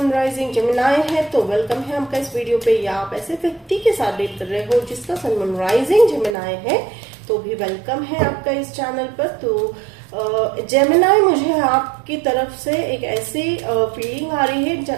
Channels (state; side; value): drops out; left; at 6.4 s